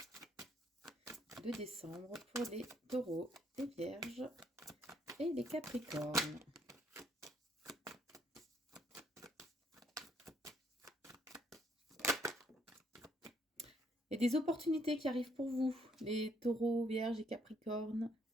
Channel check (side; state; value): both; normal; correlation 0.69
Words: de décembre pour les taureaux, les vierges et les capricornes. Il y a des opportunités qui arrivent pour vous, les taureaux, vierges et capricornes,